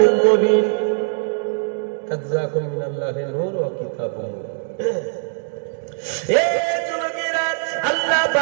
মুবিন। কাদ জাআকুম মিনাল্লাহি নূর ওয়া কিতাবুন মুবিন। এই যুবকেরা, আল্লাহ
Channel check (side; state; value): left; silent; digital silence